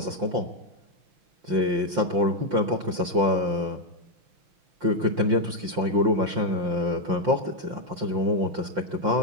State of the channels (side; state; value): left; late; 5.7 ms